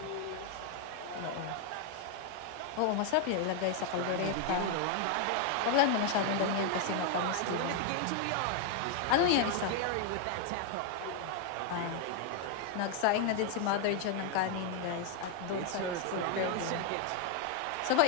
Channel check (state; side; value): different; both; correlation 0.01